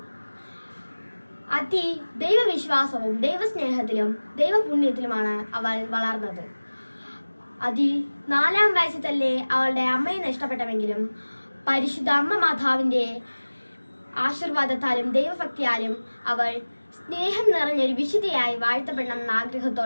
ദൈവവിശ്വാസവും ദൈവസ്നേഹത്തിലും ദൈവപുണ്യത്തിലുമാണ് അവൾ വളർന്നത്. 4-ാം വയസ്സിൽ തന്നെ അവളുടെ അമ്മയെ നഷ്ടപ്പെട്ടെങ്കിലും പരിശുദ്ധ അമ്മ മാതാവിന്റെ ആശീർവാദത്താലും ദൈവഭക്തിയാലും അവൾ സ്നേഹം നിറഞ്ഞൊരു വിശുദ്ധയായി വാഴ്ത്തപ്പെടണമെന്ന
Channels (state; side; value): inverted; both; correlation -1.00